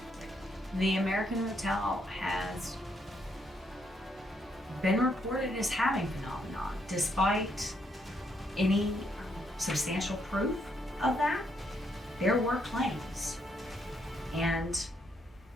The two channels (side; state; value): both; normal; correlation 0.75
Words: The American Hotel has been reported as having phenomenon, despite any substantial proof of that. There were claims, and